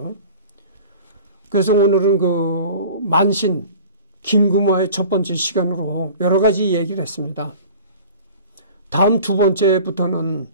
그래서 오늘은 만신, 김구마의 첫 번째 시간으로 여러 가지 얘기를 했습니다. 다음 두 번째부터는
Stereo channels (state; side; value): inverted; both; correlation -0.42